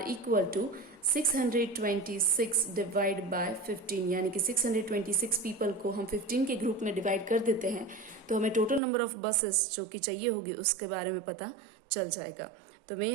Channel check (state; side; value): drops out; left; at 8.8 s